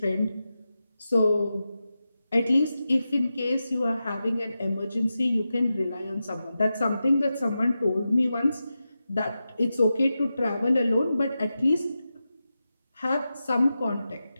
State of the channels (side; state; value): both; inverted; correlation -0.91